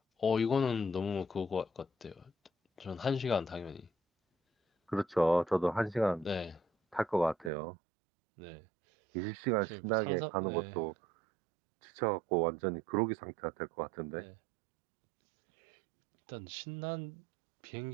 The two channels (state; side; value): drops out; left; at 7.5 s